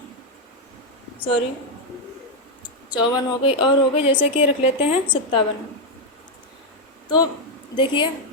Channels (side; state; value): both; normal; correlation 0.02